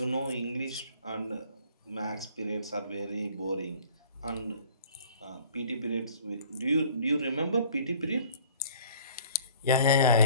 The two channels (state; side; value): inverted; both; correlation -0.52